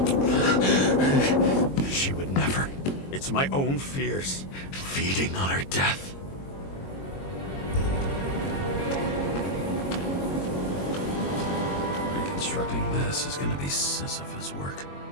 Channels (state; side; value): late; right; 22 ms